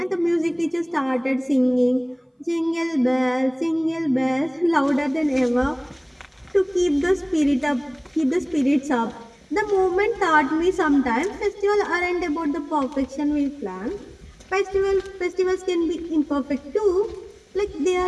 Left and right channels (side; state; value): both; identical; correlation 1.00